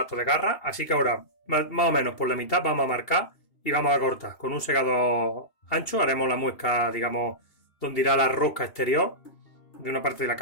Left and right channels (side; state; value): right; late; 2.8 ms